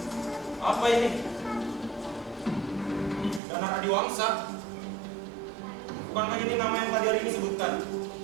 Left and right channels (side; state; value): left; drops out; at 3.4 s